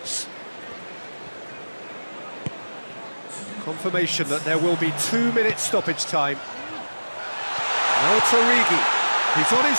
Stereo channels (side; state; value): both; inverted; correlation -1.00